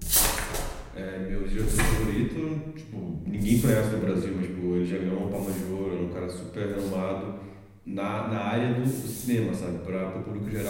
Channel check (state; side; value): identical; both; correlation 1.00